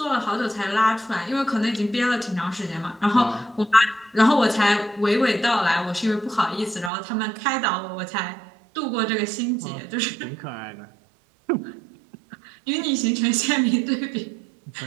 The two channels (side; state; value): left; drops out; at 6.9 s